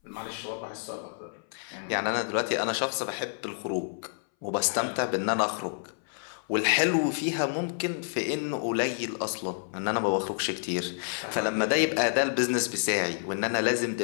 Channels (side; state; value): right; silent; 59 dB below the other